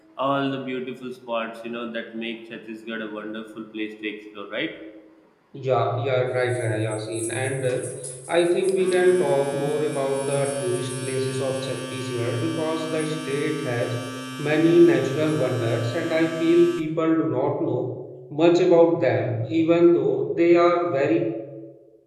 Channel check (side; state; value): both; identical; correlation 1.00